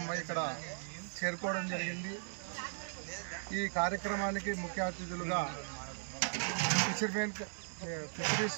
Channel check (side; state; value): left; silent; digital silence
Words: ఇక్కడ చేరుకోవడం జరిగింది. ఈ కార్యక్రమానికి ముఖ్య అతిథులుగా